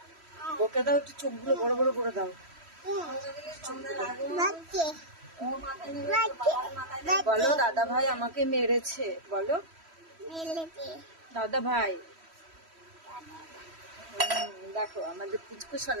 বকে দাও, একটু চোখগুলো বড় বড় করে দাও। বলো দাদা ভাই আমাকে মেরেছে, বলো দাদা ভাই। দেখো আমাদের পুচকু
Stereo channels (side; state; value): left; late; 3.1 ms